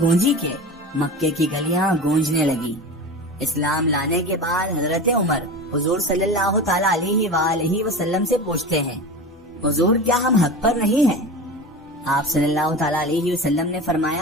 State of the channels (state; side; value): normal; both; correlation 0.30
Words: گونجی کہ مکے کی گلیاں گونجنے لگی۔ اسلام لانے کے بعد حضرت عمر حضور صلی اللہ تعالی علیہ وآلہ وسلم سے پوچھتے ہیں حضور کیا ہم حق پر نہیں ہیں؟ آپ صلی اللہ تعالی علیہ وسلم نے